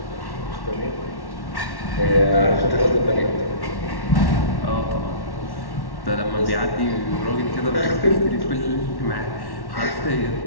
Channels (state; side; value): late; right; 1.1 ms